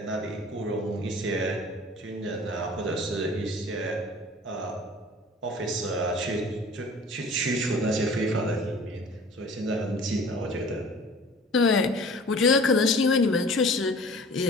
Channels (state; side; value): normal; both; correlation 0.45